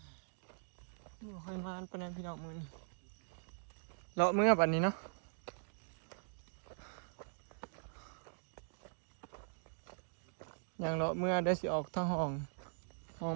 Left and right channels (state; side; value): silent; left; digital silence